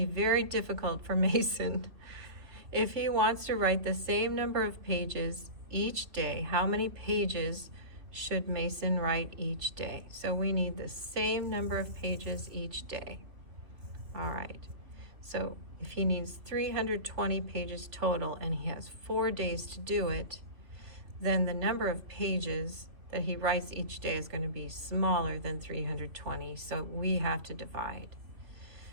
be very difficult for Mason. If he wants to write the same number of pages each day, how many pages should Mason write each day? So we need the same number of pages each day. All right, so if he needs 320 pages total and he has 4 days to do it, then the number of pages that he writes each day is going to be smaller than 320, so we have to divide.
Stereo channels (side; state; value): left; late; 2.9 ms